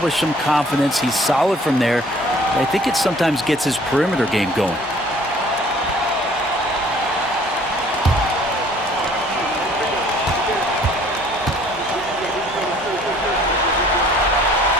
some confidence. He's solid from there. I think it sometimes gets his perimeter game going.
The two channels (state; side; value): normal; both; correlation 0.56